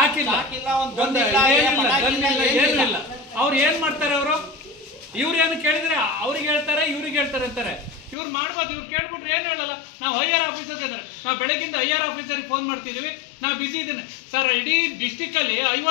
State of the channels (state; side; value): drops out; right; at 8.2 s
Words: ಏನು ಇಲ್ಲ. ಅವ್ರು ಏನ್ ಮಾಡ್ತಾರೆ, ಇವ್ರು ಏನು ಕೇಳಿದ್ರೆ ಅವ್ರಿಗೆ ಹೇಳ್ತಾರೆ, ಇವ್ರಿಗೆ ಹೇಳ್ತಾರೆ ಅಂತಾರೆ. ಇವ್ರು ಮಾಡ್ಬೋದು, ಇವ್ರು ಕೇಳ್ಬಿಟ್ರೆ ಏನು ಹೇಳಲ್ಲ. ನಾವು ಹೈಯರ್ ಆಫೀಸರ್ಗೆ ಇದ್ದಾರೆ, ನಾವು ಬೆಳಗಿಂದ ಹೈಯರ್ ಆಫೀಸರ್ಗೆ ಫೋನ್ ಮಾಡ್ತಿದ್ದೀವಿ, ನಾವು ಬಿಸಿ ಇದ್ದೀನಿ ಸರ್. ಇಡೀ ಡಿಸ್ಟಿಕ್ಕಲ್ಲಿ